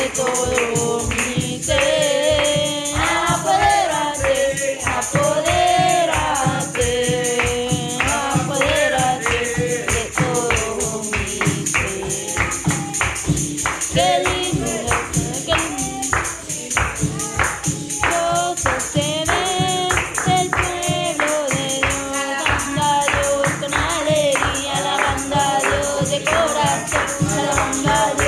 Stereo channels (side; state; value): both; identical; correlation 1.00